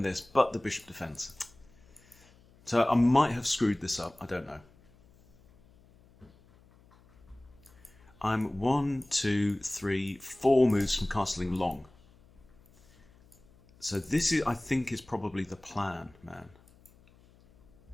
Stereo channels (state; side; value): noise; left; hum, 28 dB below the sound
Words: this, but the bishop defends. So I might have screwed this up. I don't know. I'm 1, 2, 3, 4 moves from castling long. So this is, I think, is probably the plan, man.